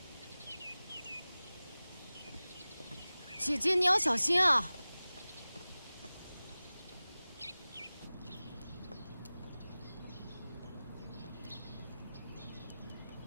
姐姐，你要小心啊！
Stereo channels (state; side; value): inverted; both; correlation -0.98